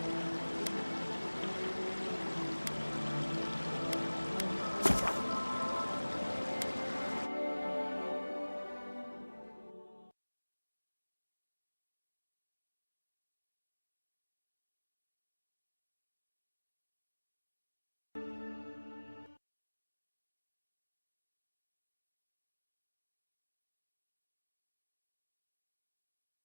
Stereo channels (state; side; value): inverted; both; correlation -1.00